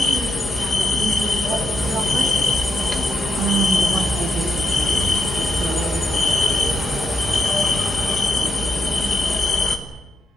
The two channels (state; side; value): normal; both; correlation 0.82